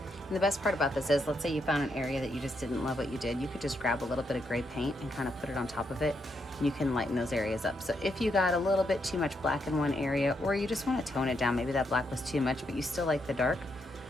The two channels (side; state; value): both; normal; correlation 0.79